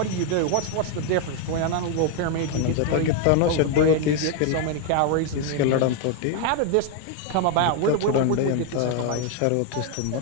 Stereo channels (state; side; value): different; both; correlation 0.01